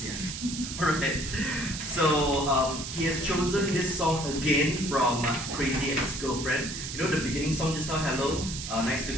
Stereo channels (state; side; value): noise; right; hiss, 7 dB below the sound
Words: Alright. So he has chosen this song again from Crazy Ex-Girlfriend. You know the beginning song just now, hello, nice to